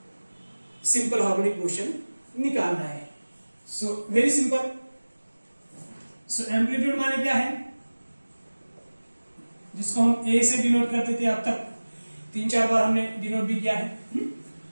simple harmonic motion निकालना है। So very simple. So amplitude माने क्या है, जिसको हम ए से डिनोट करते थे, अब तक 3-4 बार हमने डिनोट भी किया है।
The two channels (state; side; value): inverted; both; correlation -1.00